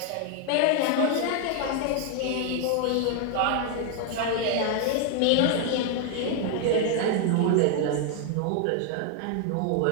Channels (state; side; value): different; both; correlation 0.00